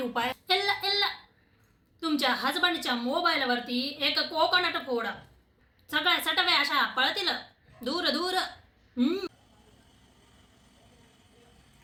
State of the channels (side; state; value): both; identical; correlation 1.00